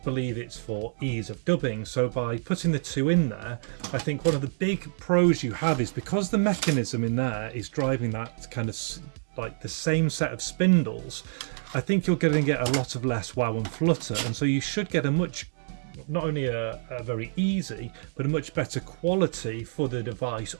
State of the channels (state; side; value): silent; left; digital silence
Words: it's for ease of dubbing. So by putting the 2 in there, I think one of the big pros you have is because the mechanism in there is driving that kind of like the same set of spindles, I think you're going to get a lot of less wow and flutter, and so you should get a much not only a very easy but a much better quality for the device